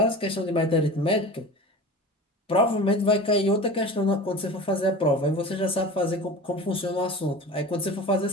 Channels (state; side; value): normal; both; correlation 0.35